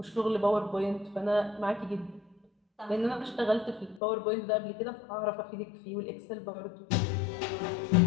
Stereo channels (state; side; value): drops out; right; at 4.0 s